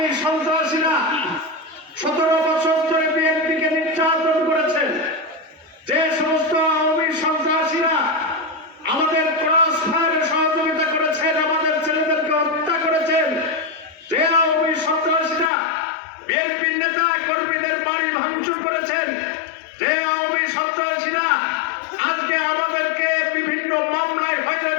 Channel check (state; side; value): drops out; right; at 15.5 s